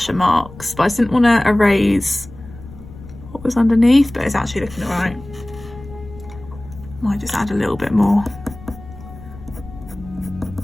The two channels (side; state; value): left; noise; rumble, 17 dB below the sound